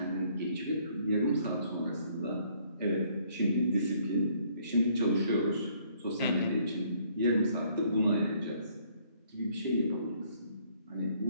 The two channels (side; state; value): both; inverted; correlation -0.64